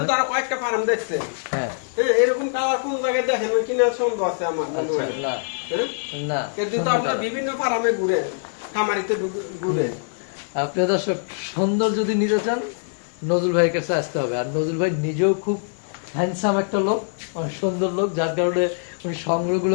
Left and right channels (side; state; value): right; silent; 63 dB below the other